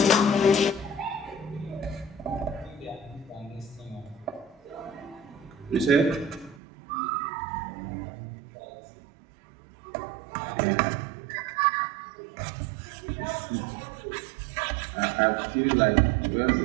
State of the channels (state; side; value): drops out; left; at 6.6 s